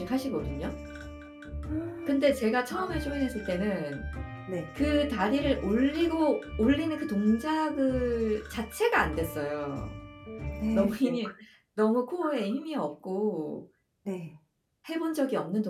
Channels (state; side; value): identical; both; correlation 1.00